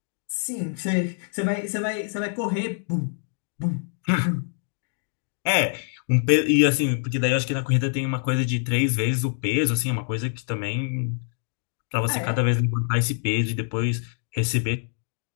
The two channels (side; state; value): right; silent; digital silence